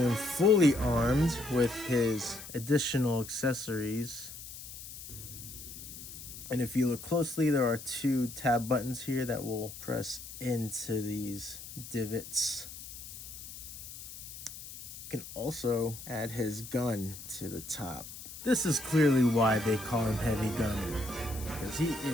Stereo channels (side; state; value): left; noise; hiss, 12 dB below the sound